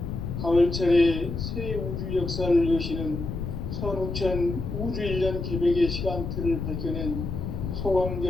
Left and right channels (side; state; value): left; noise; rumble, 4 dB below the sound